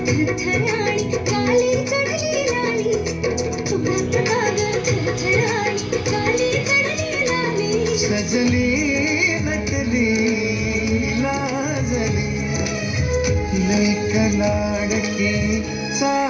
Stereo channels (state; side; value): identical; both; correlation 1.00